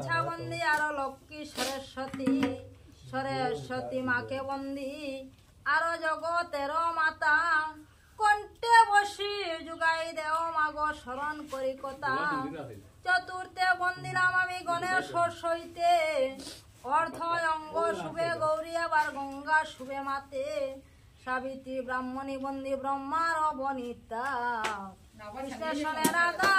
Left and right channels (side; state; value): both; identical; correlation 1.00